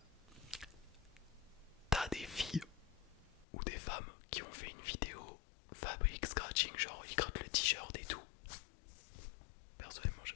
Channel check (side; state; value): right; drops out; at 3.5 s